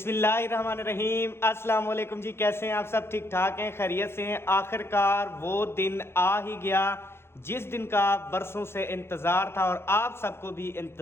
अस्सलाम वालेकुम जी। कैसे हैं आप सब? ठीक ठाक हैं, खैरियत से हैं? आखिरकार वो दिन आ ही गया जिस दिन का बरसों से इंतज़ार था और आप सबको भी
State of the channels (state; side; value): late; right; 0.12 ms